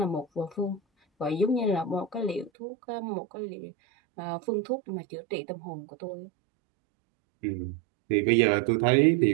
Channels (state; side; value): drops out; left; at 2.5 s